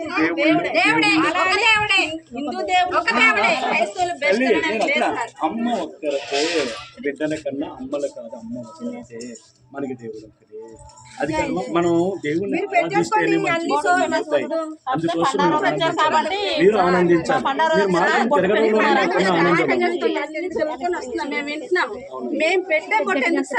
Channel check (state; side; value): identical; both; correlation 1.00